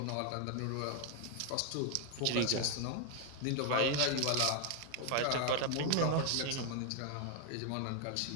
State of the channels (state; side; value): different; both; correlation 0.00